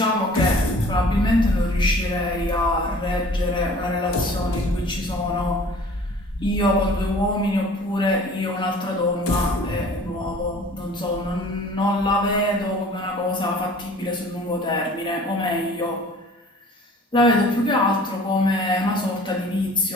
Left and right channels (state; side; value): normal; both; correlation 0.48